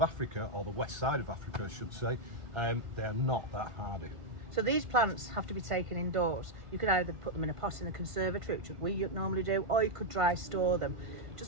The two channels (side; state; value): left; late; 1.5 ms